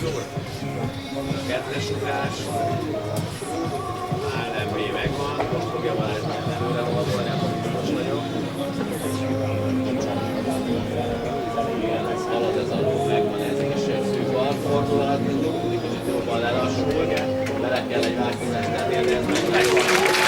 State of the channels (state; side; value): identical; both; correlation 1.00